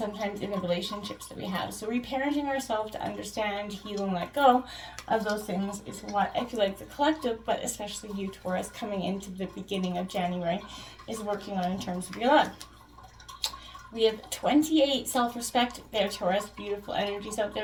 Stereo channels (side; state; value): both; identical; correlation 1.00